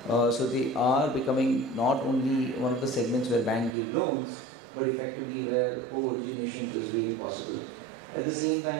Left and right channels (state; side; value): drops out; left; at 3.8 s